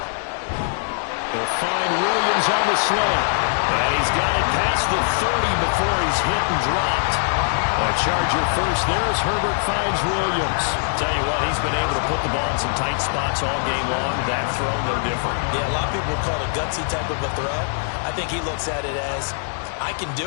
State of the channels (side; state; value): right; silent; digital silence